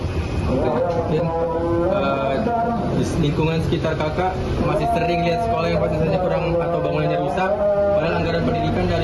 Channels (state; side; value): identical; both; correlation 1.00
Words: Mungkin di lingkungan sekitar kakak masih sering lihat sekolah yang fasilitasnya kurang atau bangunannya rusak, padahal anggaran pendidikan